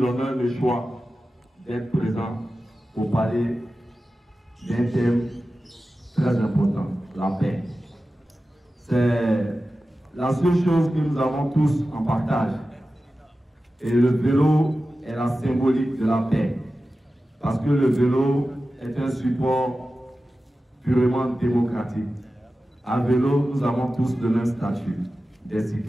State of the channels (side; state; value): both; normal; correlation 0.94